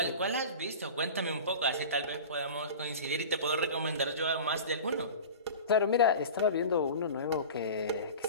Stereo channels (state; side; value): inverted; both; correlation -0.34